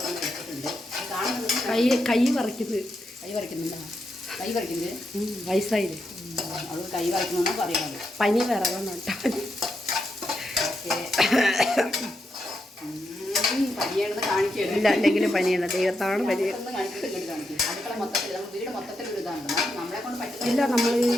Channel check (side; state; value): both; normal; correlation 0.83